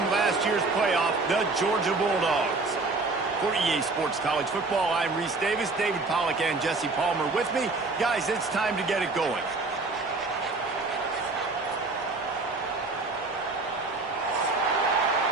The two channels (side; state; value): left; quieter; 3.6 dB